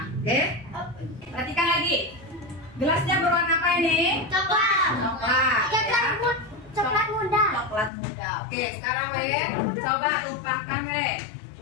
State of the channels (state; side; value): drops out; right; at 7.9 s